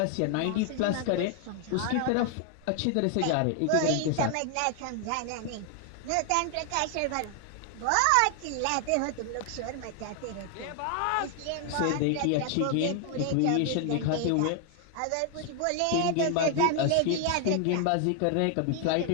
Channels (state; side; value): different; both; correlation 0.00